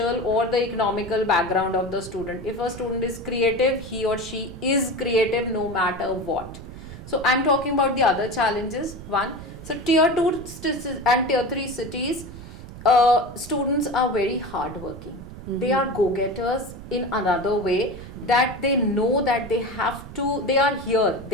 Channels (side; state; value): right; noise; rumble, 14 dB below the sound